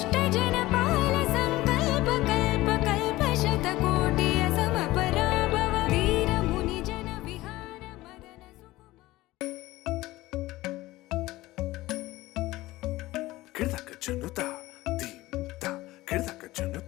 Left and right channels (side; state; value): right; quieter; 18.1 dB